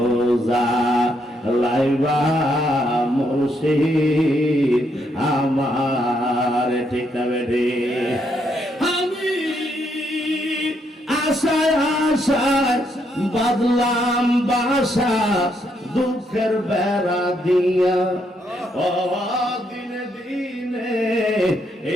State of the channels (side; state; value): both; normal; correlation 0.75